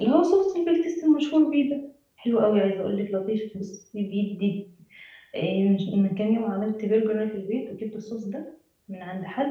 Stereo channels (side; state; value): both; identical; correlation 1.00